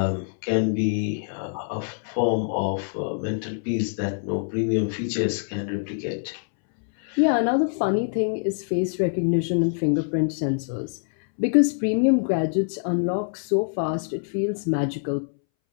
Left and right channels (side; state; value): right; silent; 62 dB below the other